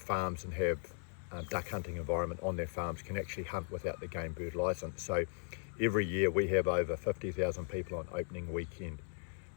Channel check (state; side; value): silent; right; 53 dB below the other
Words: and have duck hunting environment on their farms can actually hunt without the game bird license. So every year we have over 50,000 people on opening weekend